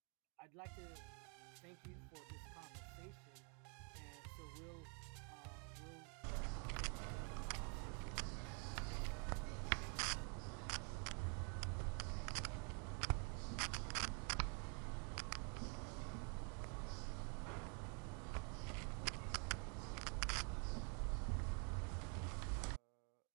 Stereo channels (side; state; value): left; quieter; 39.0 dB